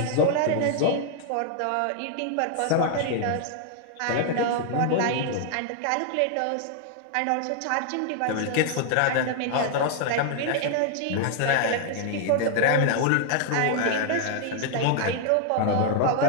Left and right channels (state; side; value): different; both; correlation 0.00